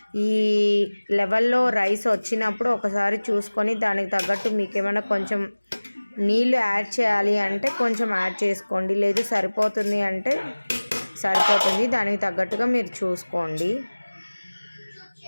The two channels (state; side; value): inverted; both; correlation -1.00